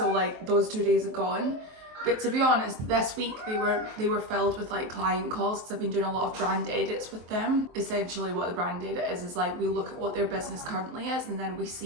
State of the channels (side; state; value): left; late; 23 ms